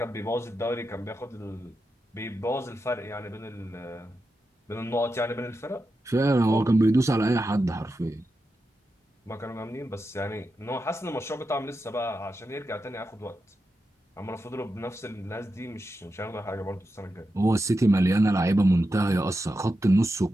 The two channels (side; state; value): both; normal; correlation 0.89